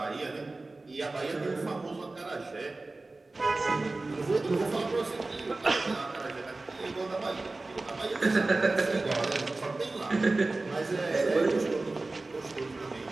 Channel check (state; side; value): quieter; left; 3.2 dB